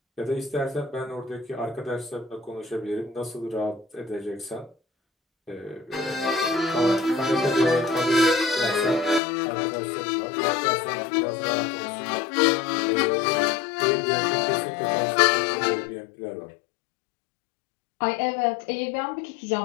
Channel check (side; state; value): right; drops out; at 9.2 s